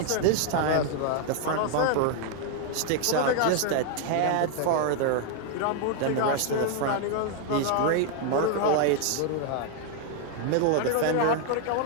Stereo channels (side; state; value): both; different; correlation 0.00